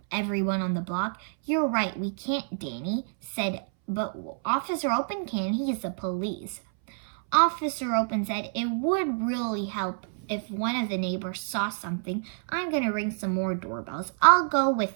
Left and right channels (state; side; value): silent; left; 59 dB below the other